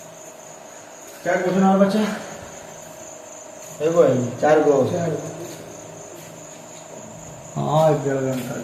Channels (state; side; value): identical; both; correlation 1.00